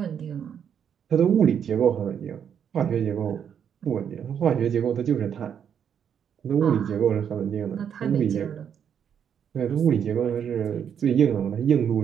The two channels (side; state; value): left; quieter; 8.2 dB